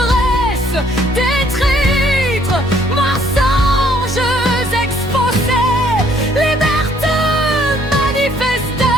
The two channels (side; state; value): both; normal; correlation 0.64